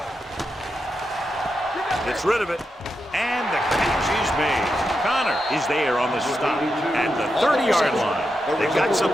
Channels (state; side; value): normal; both; correlation 0.86